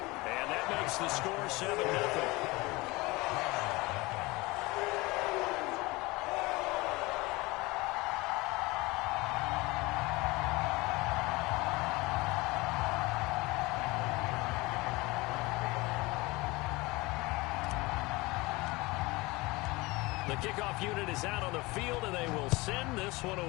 that makes the score 7-0. The kickoff unit is out on the field, and they will send this one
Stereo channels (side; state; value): right; quieter; 22.7 dB